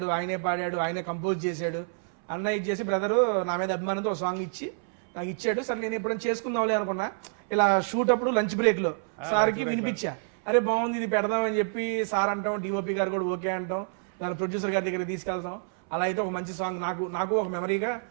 ఆయనే పాడాడు, ఆయనే కంపోజ్ చేశాడు. అన్న ఇది చేసి బ్రదరు నా మీద అభిమానంతో ఒక సాంగ్ ఇచ్చి నాకు ఇచ్చాడు. సరే నేను ఎప్పుడైనా చేసుకుందాంలే అనుకున్నా. ఇలా షూట్ అప్పుడు లంచ్ బ్రేక్ లో సార్కి వినిపించా, అరే బాగుంది ఇది పెడదామని చెప్పి సార్ అంటాం, డిఓపి గారు కూడా ఓకే అంటాం, దాని ప్రొడ్యూసర్ గారి దగ్గర తీసుకెళ్తాం. అలా అయితే ఒక మంచి సాంగ్ నాకు ఒక మెమరీగా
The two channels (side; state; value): left; silent; 59 dB below the other